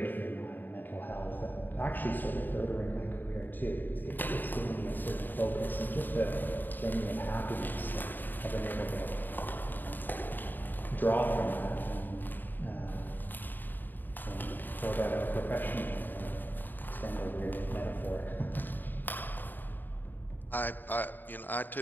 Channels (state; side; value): late; right; 0.090 ms